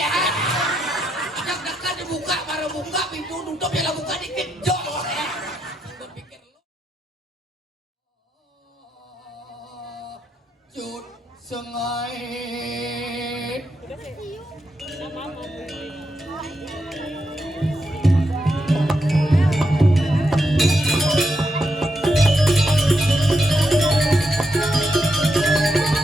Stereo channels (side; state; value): both; normal; correlation 0.82